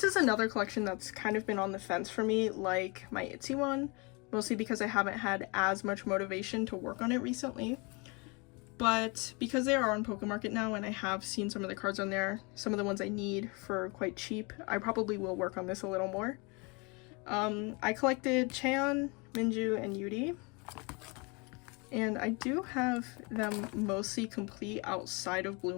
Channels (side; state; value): right; quieter; 29.7 dB